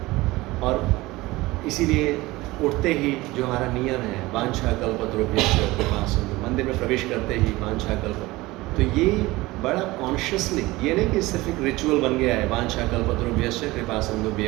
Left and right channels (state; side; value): quieter; left; 20.0 dB